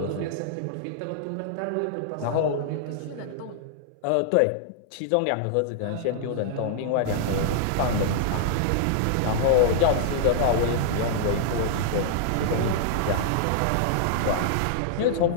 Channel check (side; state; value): both; different; correlation -0.01